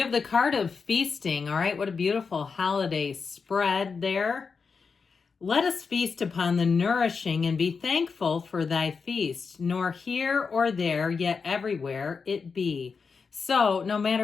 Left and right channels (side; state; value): right; quieter; 5.3 dB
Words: have the card of feasting. All right, what a beautiful holiday spread there. Let us feast upon the nourishing and be thankful for thy feast, nor here or there, yet everywhere it be. So no